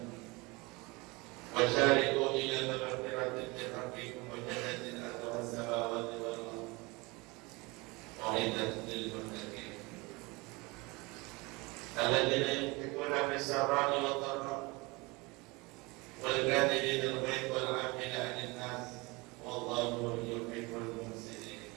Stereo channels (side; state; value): left; quieter; 25.1 dB